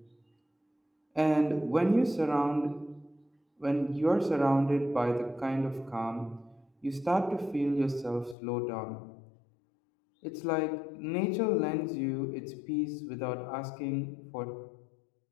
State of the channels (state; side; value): drops out; right; at 8.3 s